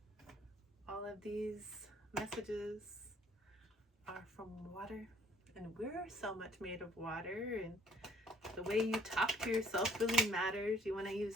All of these messages are from water, and we're so much made of water, and The way you talk to yourself really matters. You want to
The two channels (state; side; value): normal; both; correlation 0.59